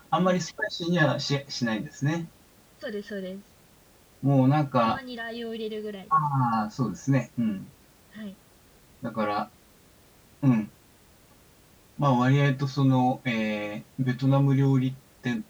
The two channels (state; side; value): identical; both; correlation 1.00